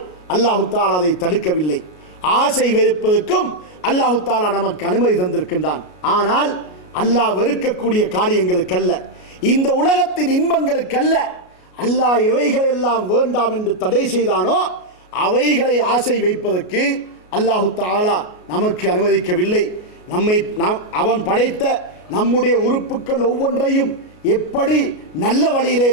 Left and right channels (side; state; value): right; late; 33 ms